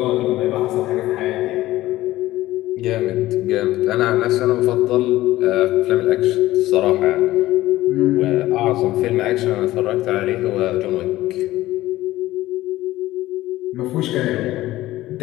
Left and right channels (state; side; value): quieter; right; 16.2 dB